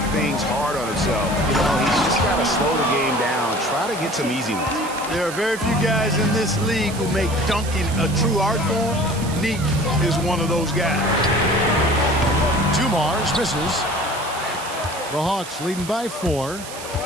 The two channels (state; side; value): noise; right; hiss, 13 dB below the sound